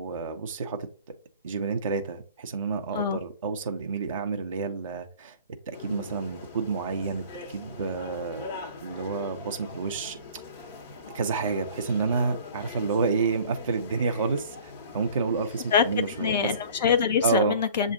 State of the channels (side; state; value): both; inverted; correlation -0.47